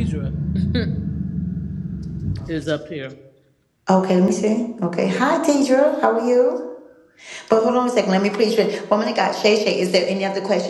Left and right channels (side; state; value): both; identical; correlation 1.00